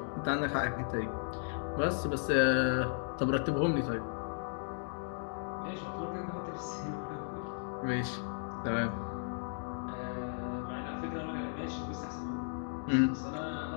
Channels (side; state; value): right; silent; digital silence